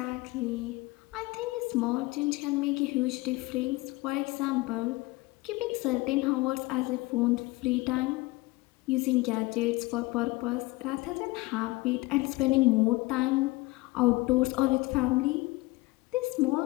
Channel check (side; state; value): right; quieter; 21.9 dB